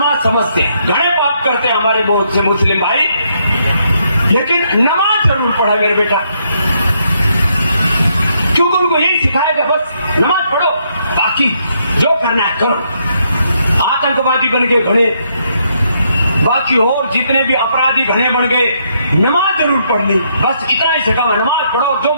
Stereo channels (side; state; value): both; inverted; correlation -0.75